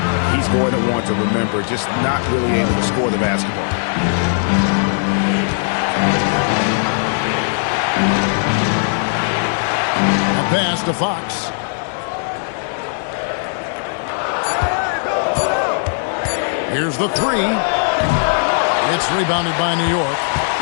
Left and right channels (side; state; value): right; silent; digital silence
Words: he's going to want to remember, just not really able to score the basketball. A pass to Fox. Here's the 3. It's rebounded by New York.